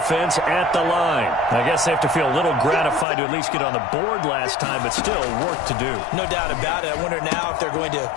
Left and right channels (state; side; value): drops out; right; at 3.1 s